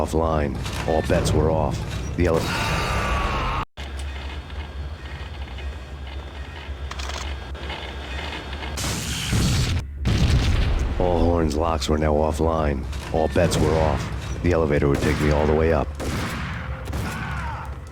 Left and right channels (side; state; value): both; identical; correlation 1.00